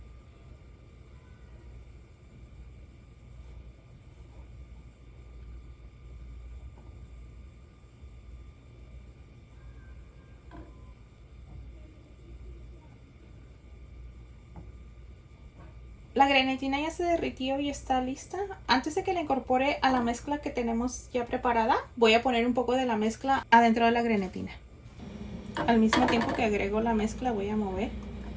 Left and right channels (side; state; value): both; identical; correlation 1.00